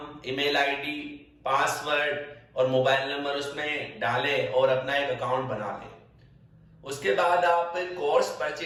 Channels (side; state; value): both; identical; correlation 1.00